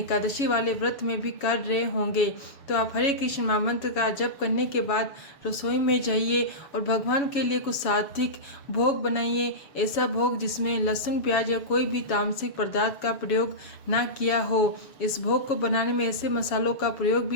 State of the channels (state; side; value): late; right; 7.1 ms